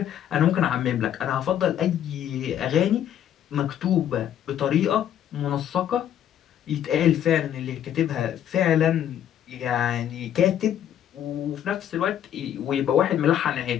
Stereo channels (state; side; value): quieter; right; 10.4 dB